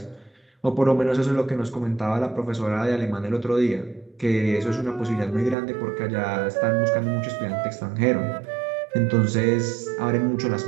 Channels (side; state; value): left; drops out; at 5.6 s